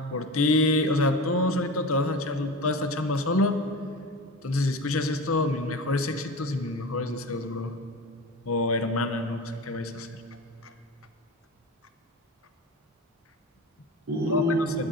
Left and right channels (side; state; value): both; normal; correlation 0.29